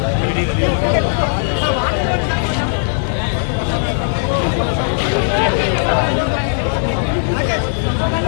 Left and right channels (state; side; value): silent; right; digital silence